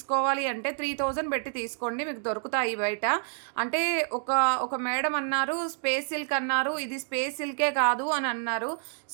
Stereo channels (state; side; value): silent; left; 59 dB below the other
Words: అంటే 3000 పెట్టి తీసుకోండి, మీకు దొరుకుతాయి బయట. అంటే ఒక మేడం అన్నారు స్పేస్ సిల్క్ అన్నారు, ఇది స్పేస్ సిల్కే కాదు అని అన్నారు.